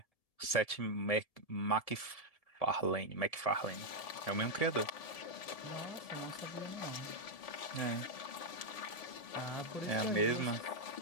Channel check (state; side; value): late; right; 1.7 ms